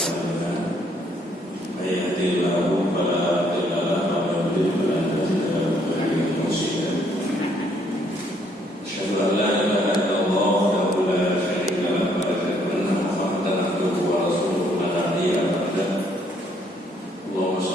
a'malina. May yahdihillahu fala mudilla lahu wa may yudlil fala hadiya lahu. Asyhadu an la ilaha illallah wahdahu la syarika lahu wa asyhadu anna Muhammadan abduhu wa rasuluhu la nabiyya ba'dahu. Allahumma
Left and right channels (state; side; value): normal; both; correlation 0.68